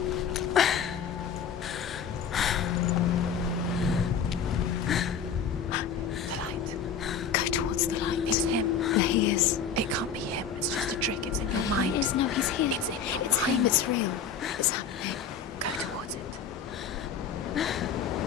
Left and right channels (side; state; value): right; quieter; 6.7 dB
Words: The light. Go towards the light. It's him. There he is. It can't be him. It's just a trick. It's in your mind. No, he's here. It's in your mind. It's real. It's happening. Go towards it.